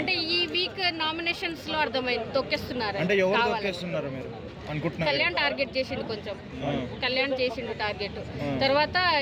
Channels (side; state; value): both; identical; correlation 1.00